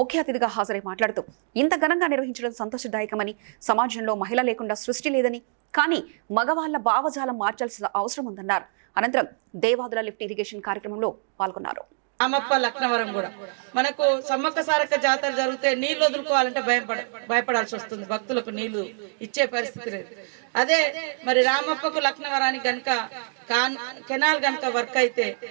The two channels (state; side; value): silent; left; 62 dB below the other